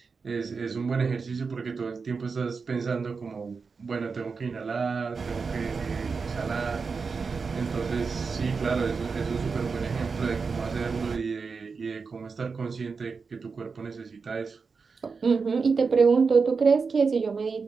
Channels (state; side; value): quieter; left; 4.9 dB